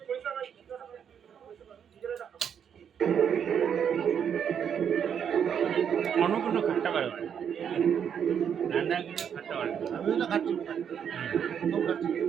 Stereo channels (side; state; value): left; quieter; 8.1 dB